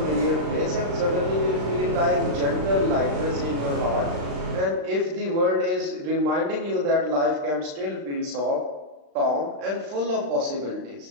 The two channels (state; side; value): late; left; 35 ms